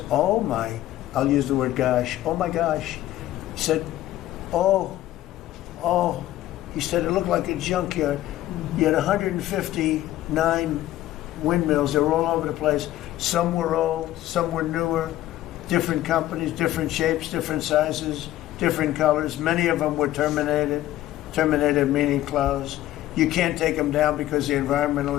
oh my, I'll use the word gosh, oh my gosh. He said, oh, he said it looked like a junkyard. You had 159 windmills. They were all over the place. Some were old, some were newer, different companies, different shapes, different sizes, different colors. Many of them were terminated meaning closed. You can't take them down because the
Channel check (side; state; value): right; quieter; 14.4 dB